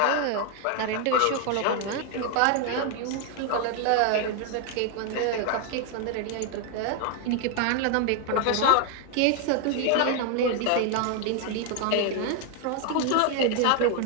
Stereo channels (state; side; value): different; both; correlation 0.01